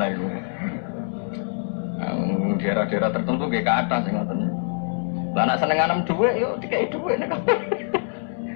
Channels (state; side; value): silent; right; digital silence